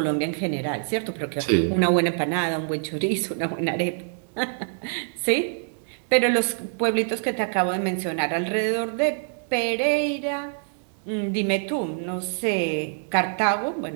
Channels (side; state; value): left; silent; digital silence